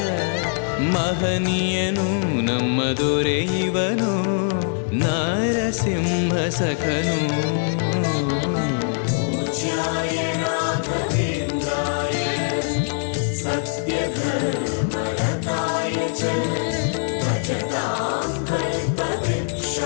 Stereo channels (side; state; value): right; silent; digital silence